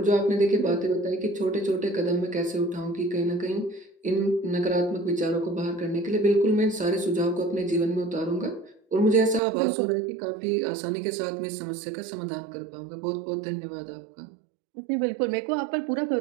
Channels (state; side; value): drops out; left; at 9.4 s